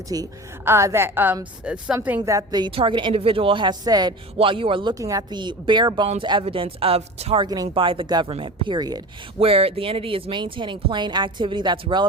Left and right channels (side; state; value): both; normal; correlation 0.33